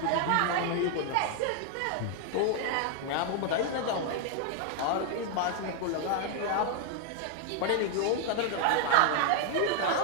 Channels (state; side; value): different; both; correlation 0.00